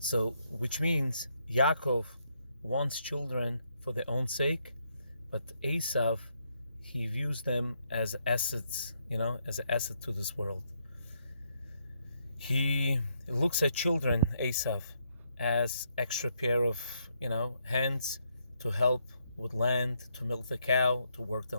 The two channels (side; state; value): both; inverted; correlation -0.75